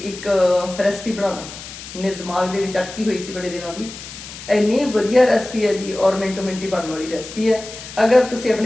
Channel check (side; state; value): left; noise; hiss, 13 dB below the sound